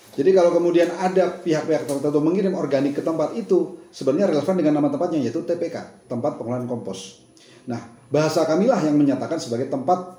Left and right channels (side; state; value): both; identical; correlation 1.00